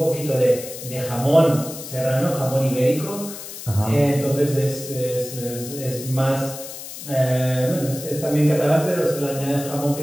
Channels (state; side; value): noise; left; hiss, 11 dB below the sound